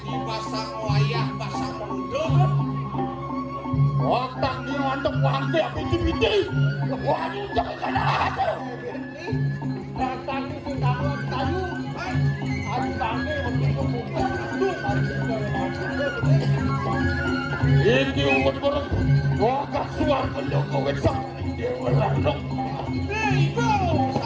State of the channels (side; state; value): both; identical; correlation 1.00